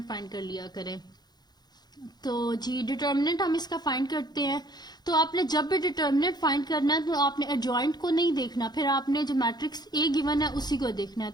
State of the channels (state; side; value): late; right; 0.20 ms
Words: फाइंड कर लिया करें। तो जी डिटर्मिनेंट हम इसका फाइंड करते हैं। तो आपने जब भी डिटर्मिनेंट फाइंड करना है तो आपने एडजॉइंट को नहीं देखना, फिर आपने जो मैट्रिक्स ए गिवन है उसी को देखना है।